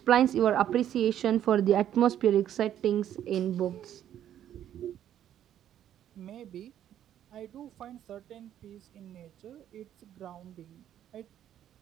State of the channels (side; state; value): left; quieter; 10.9 dB